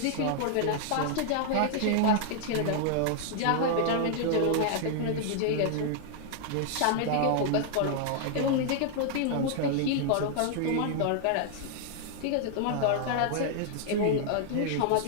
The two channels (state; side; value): different; both; correlation 0.00